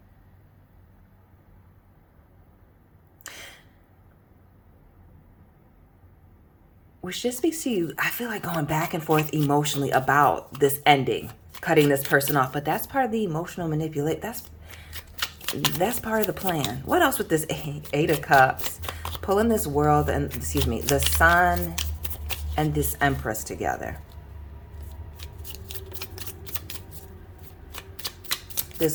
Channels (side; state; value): both; identical; correlation 1.00